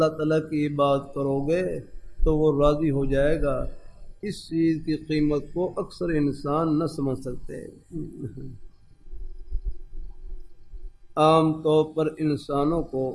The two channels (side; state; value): both; identical; correlation 1.00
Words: تعالیٰ کی عبادت کرو گے تو وہ راضی ہو جائے گا، اس چیز کی قیمت کو اکثر انسان نہ سمجھ سکتے. عام طور پر انسانوں کو